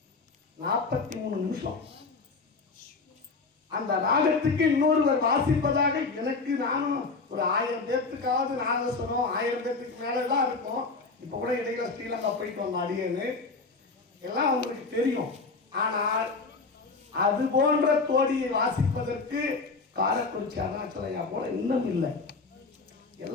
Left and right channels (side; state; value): right; quieter; 4.1 dB